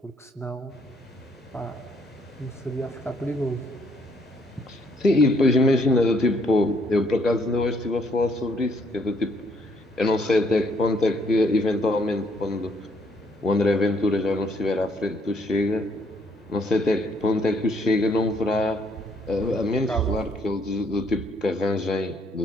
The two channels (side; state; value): both; normal; correlation 0.68